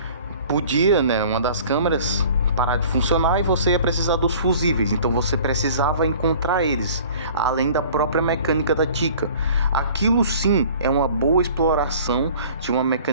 podia, né, uma das câmeras parar de funcionar e você ia precisar dos fusíveis, então você precisava encontrar eles, além da própria mecânica da Chica. Aquilo sim é uma boa exploração de uma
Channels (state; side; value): inverted; both; correlation -0.48